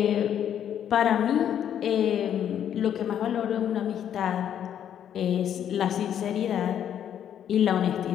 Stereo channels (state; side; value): quieter; right; 9.6 dB